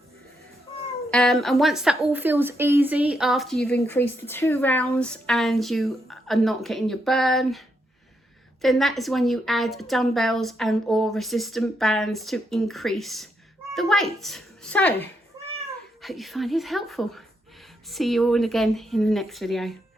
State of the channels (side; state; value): both; normal; correlation 0.80